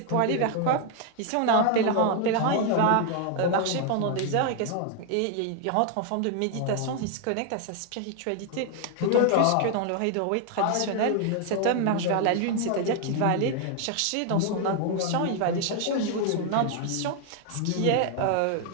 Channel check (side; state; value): both; different; correlation 0.00